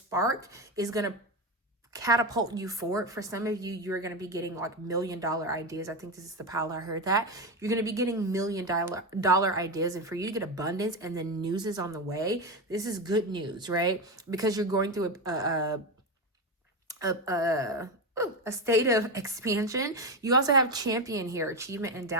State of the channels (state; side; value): normal; both; correlation 0.15